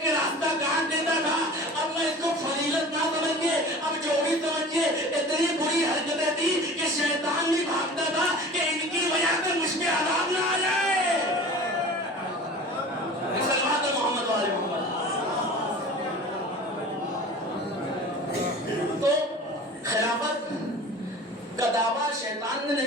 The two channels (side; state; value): both; normal; correlation 0.40